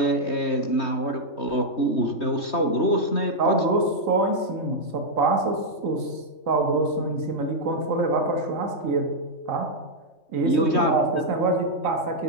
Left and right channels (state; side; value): late; right; 3.2 ms